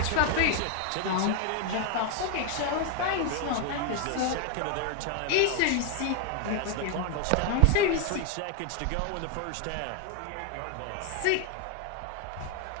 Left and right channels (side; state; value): both; different; correlation 0.01